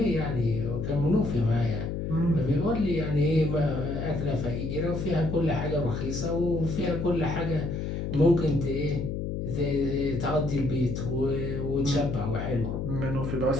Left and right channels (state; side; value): noise; left; hum, 3 dB below the sound